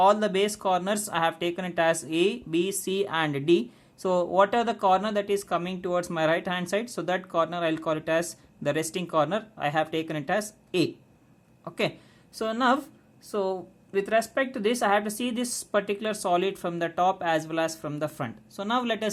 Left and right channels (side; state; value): both; identical; correlation 1.00